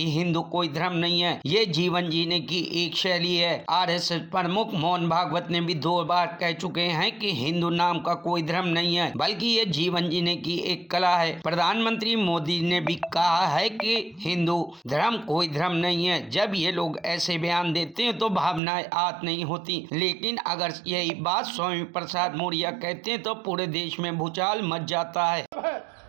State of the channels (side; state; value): left; drops out; at 18.6 s